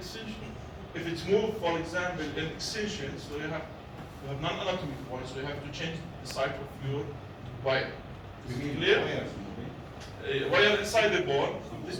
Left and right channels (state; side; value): identical; both; correlation 1.00